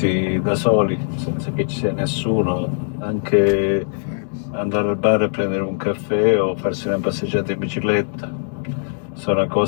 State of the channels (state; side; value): silent; right; digital silence